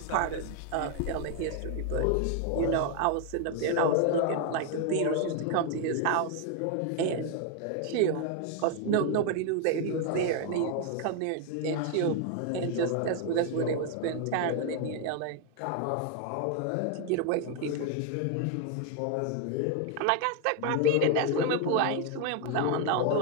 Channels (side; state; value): both; different; correlation 0.01